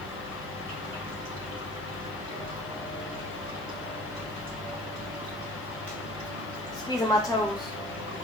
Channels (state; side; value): noise; left; hiss, 25 dB below the sound